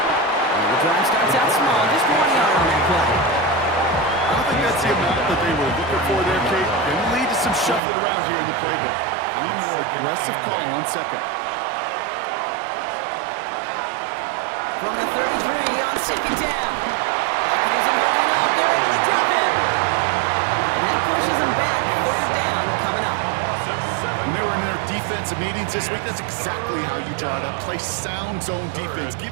And the drive starts out small, just 1 yard on that play. I don't think that's the amount that they were looking for there, Kate. Going to lead to some shuffling around here in the playbook. A more aggressive call on second. From the 33 on second down. Pocket isn't holding up. They're able to drop it. And that pushes them back. Third down coming up. When they were in their defensive meetings this week, that's exactly how you draw it up. Play sound zone defense.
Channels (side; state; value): left; drops out; at 7.8 s